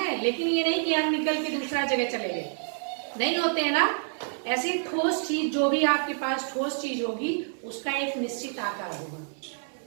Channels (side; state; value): left; silent; 59 dB below the other